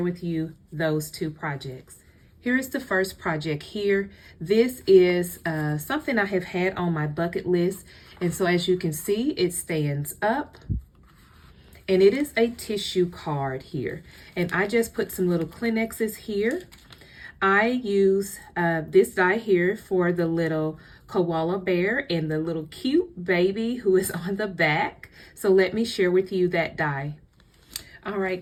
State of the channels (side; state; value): both; identical; correlation 1.00